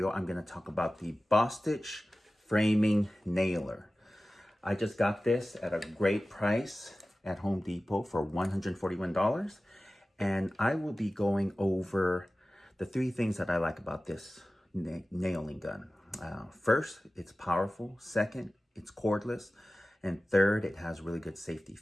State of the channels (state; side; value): normal; both; correlation 0.96